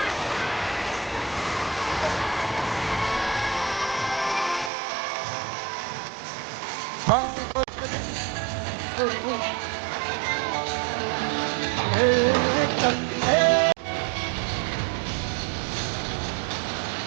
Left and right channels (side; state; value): left; drops out; at 4.7 s